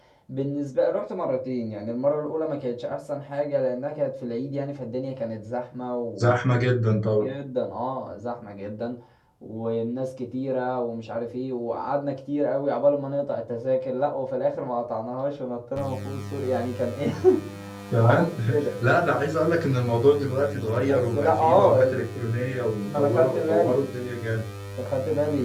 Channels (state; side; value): identical; both; correlation 1.00